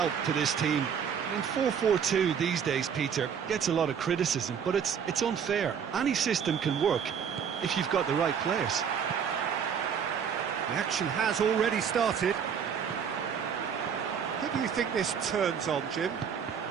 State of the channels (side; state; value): left; quieter; 7.4 dB